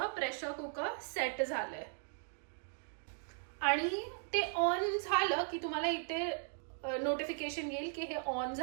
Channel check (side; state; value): left; silent; 53 dB below the other